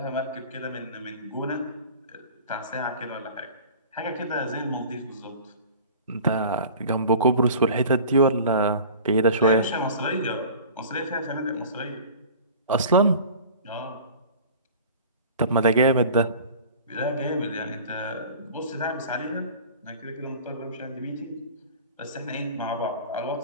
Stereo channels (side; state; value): both; inverted; correlation -0.41